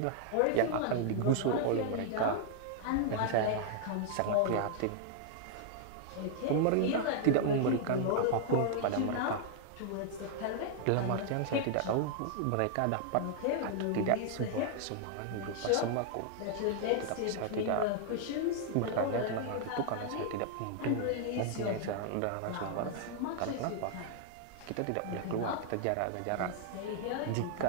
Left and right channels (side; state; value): both; different; correlation 0.00